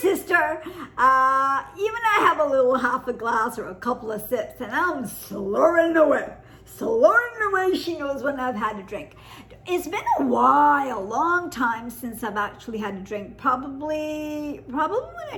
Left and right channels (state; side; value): identical; both; correlation 1.00